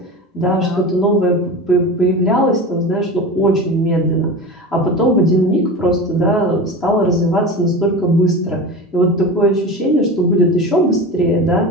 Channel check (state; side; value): normal; both; correlation 0.29